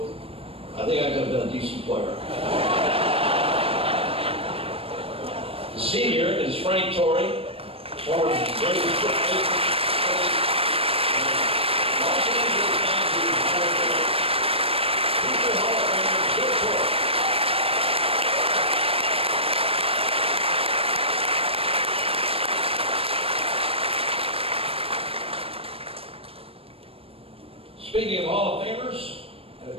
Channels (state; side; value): late; left; 0.28 ms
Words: I think I could have been a decent player. The senior is Frank Torrey, former Braves pitcher. Speaking of Hall of Famers, I had a